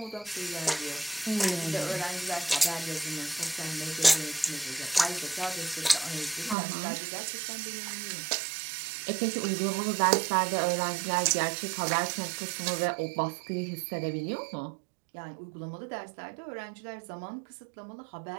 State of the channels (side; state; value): left; drops out; at 6.6 s